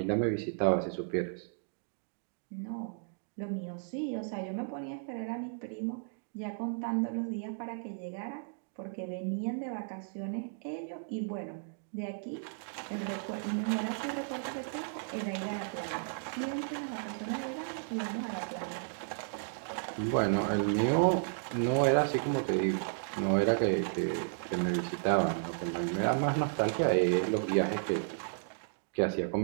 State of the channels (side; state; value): left; silent; digital silence